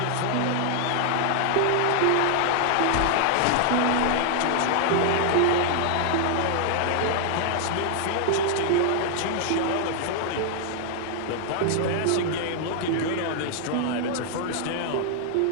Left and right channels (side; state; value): both; different; correlation 0.00